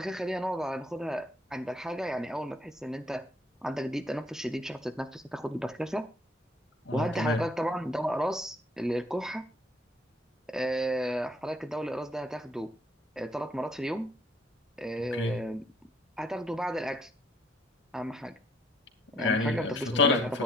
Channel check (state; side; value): normal; both; correlation 0.65